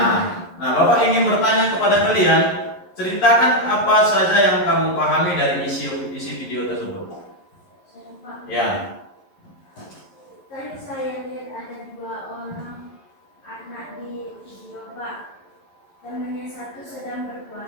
Nah, Bapak ingin bertanya kepada kalian, ceritakan apa saja yang kamu pahami dari isi video tersebut. Ya. Tadi saya lihat ada 2 orang anak di video, Pak. Temannya satu sedang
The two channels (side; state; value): right; late; 11 ms